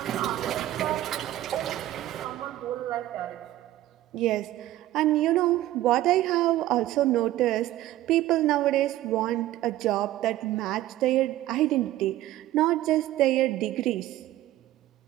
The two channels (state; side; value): quieter; left; 14.6 dB